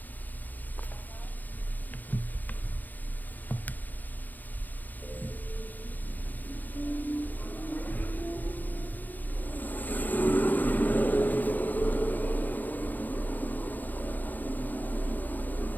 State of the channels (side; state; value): right; late; 0.084 ms